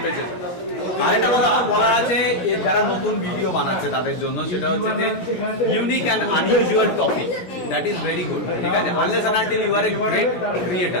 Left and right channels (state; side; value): late; right; 17 ms